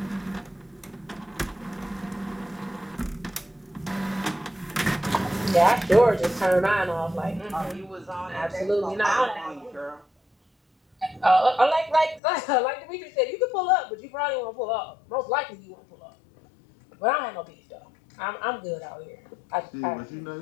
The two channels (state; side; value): drops out; right; at 12.2 s